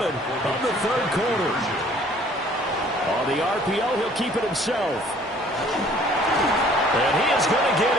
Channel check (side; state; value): both; normal; correlation 0.56